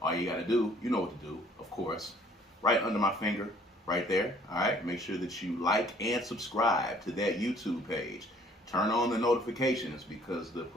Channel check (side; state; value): both; normal; correlation 0.58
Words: all you got to do, you know what to do, of course, right under my finger, right there. All right, make sure that you like and subscribe to that YouTube page. Turn on the notifications because the